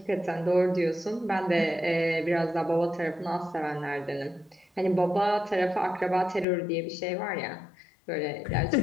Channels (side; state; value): right; drops out; at 6.5 s